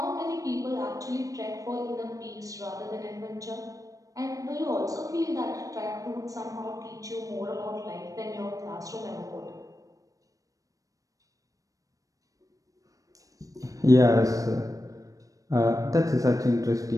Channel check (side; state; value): left; late; 0.16 ms